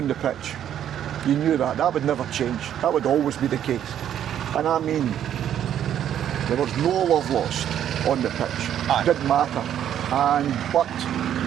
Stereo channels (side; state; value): left; quieter; 10.3 dB